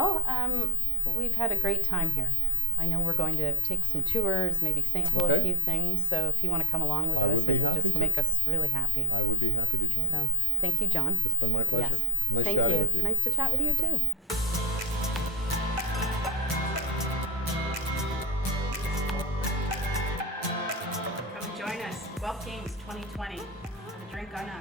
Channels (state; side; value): normal; both; correlation 0.70